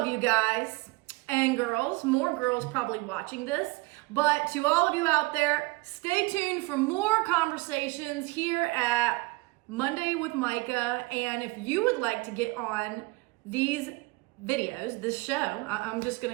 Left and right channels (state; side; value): quieter; left; 24.0 dB